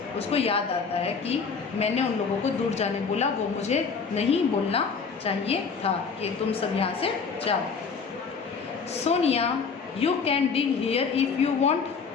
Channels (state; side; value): quieter; right; 5.4 dB